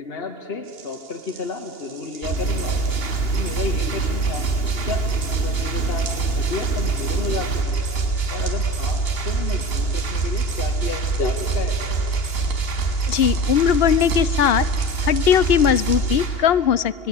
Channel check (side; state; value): right; late; 2.8 ms